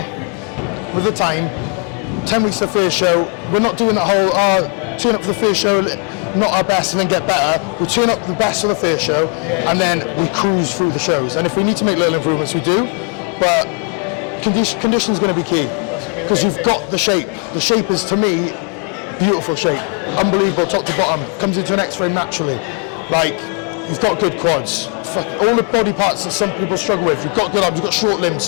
with the time, 10 weeks to the first show, we're not doing that whole, turn up for the first show, not our best and then get better. We turn up the best for the first show, and then we cruise through the shows. And if we need to make little improvements, we do. But condition is going to be key. Because you've got the shape. The shape is, to me, beautiful shape. Unbelievable, top to bottom. Comes into an X-frame naturally. Like, you've got good quads. All the body parts that some people struggle with. You've got good arms, you've got short limbs,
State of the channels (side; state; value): right; quieter; 36.5 dB